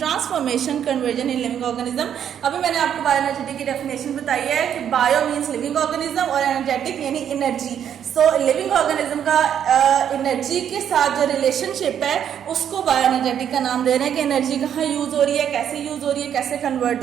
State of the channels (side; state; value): left; quieter; 9.2 dB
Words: conversion in living organism. अभी मैंने आपको बायोएनर्जेटिक की डेफिनेशन बताई है कि बायो मीन्स लिविंग ऑर्गेनिज्म और एनर्जेटिक यानी एनर्जी। सो लिविंग ऑर्गेनिज्म का एनर्जी के साथ जो रिलेशनशिप है उसको बायोएनर्जेटिक का नाम दे रहे हैं कि एनर्जी कहाँ यूज हो रही है, कैसे यूज हो रही है, कैसे